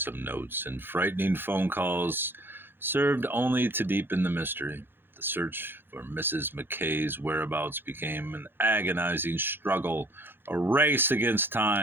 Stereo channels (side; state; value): left; late; 0.10 ms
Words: notes and frightening phone calls served only to deepen the mystery. The search for Mrs. McKay's whereabouts became an agonizing struggle, a race against